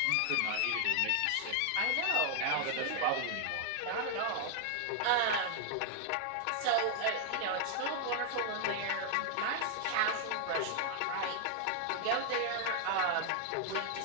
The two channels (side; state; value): both; different; correlation 0.00